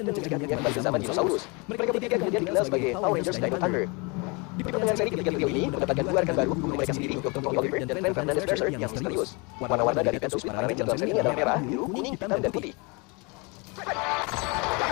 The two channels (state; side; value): quieter; right; 29.6 dB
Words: mencegah dunia kembali ke zaman dinosaurus. Mereka bertiga kemudian dikenal sebagai Power Rangers Dino Thunder. Di pertengahan seri ketiga trio ini mendapatkan 2 rekan baru, guru mereka sendiri, Dr. Tommy Oliver dan Frank Fernandez Mercer yang misterius. Warna-warna dari Battle Suit para Ranger dalam seri ini adalah merah, biru, kuning, hitam, dan putih.